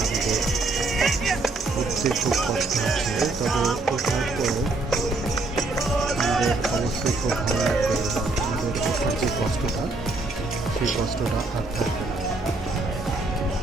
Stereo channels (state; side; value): quieter; left; 3.2 dB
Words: উঠতে খুব কষ্ট হচ্ছে। তবে ওঠার পরে আমাদের অবশ্যই খুব ভালো লাগবে। আমাদের ওঠার যে কষ্টটা, সেই কষ্টটা আর থাকবে না।